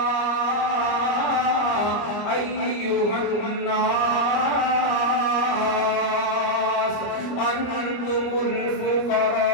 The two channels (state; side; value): late; right; 26 ms